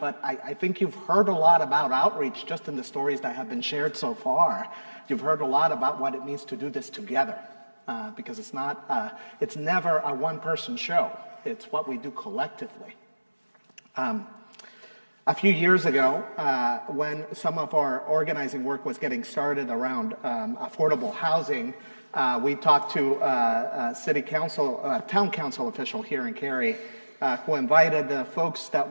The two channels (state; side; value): inverted; both; correlation -1.00